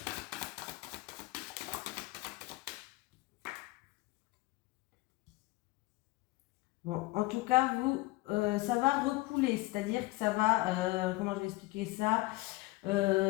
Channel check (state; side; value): quieter; right; 20.9 dB